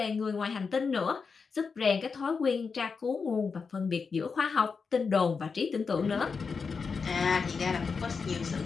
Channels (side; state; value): right; quieter; 5.2 dB